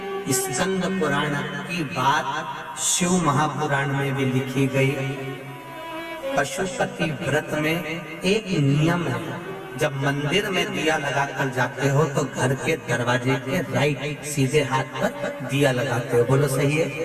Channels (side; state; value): both; identical; correlation 1.00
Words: स्कंद पुराण की बात शिव महापुराण में भी लिखी गई। पशुपति व्रत में एक नियम है, जब मंदिर में दिया लगा कर जाते हो तो घर के दरवाजे के राइट सीधे हाथ पर दिया लगाते हो। बोलो सही है?